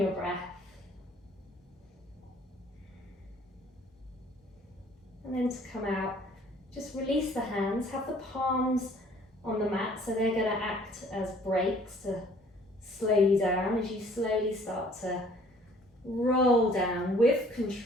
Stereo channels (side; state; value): both; normal; correlation 0.56